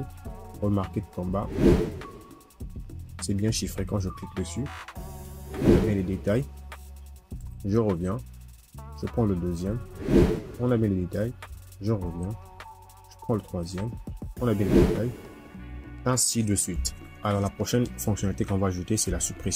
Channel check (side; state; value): both; identical; correlation 1.00